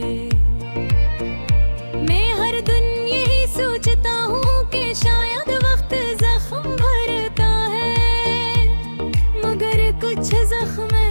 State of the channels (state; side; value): inverted; both; correlation -1.00